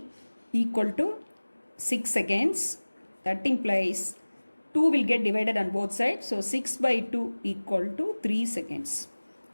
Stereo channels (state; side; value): inverted; both; correlation -1.00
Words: equal to 6 seconds. That implies 2 will get divided on both sides. So 6 by 2 equal to 3 seconds.